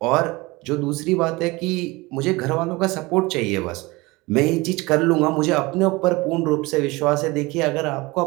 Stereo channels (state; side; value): quieter; left; 22.8 dB